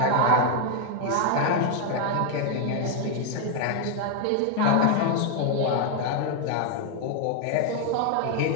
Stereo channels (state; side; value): different; both; correlation 0.01